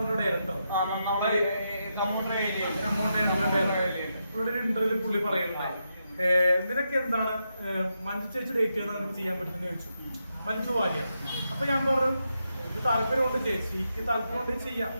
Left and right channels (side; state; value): both; inverted; correlation -0.84